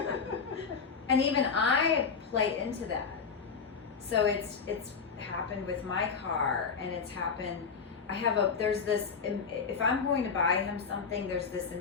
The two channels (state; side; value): quieter; right; 5.6 dB